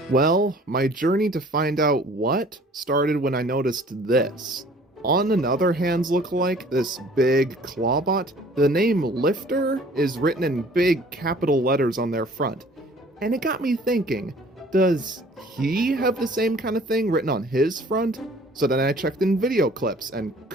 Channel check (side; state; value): both; normal; correlation 0.52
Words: Well, my journey to find out what started when I noticed this. On another Hands lookalike, this big clawbot, the name Lifter is written in big capital letters on their front. And it got me thinking, does he have the same kind of thing written on his front? So then I checked in video clips and